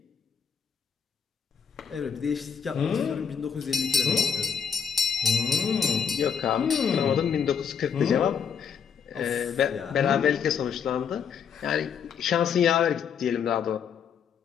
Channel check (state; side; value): quieter; right; 7.2 dB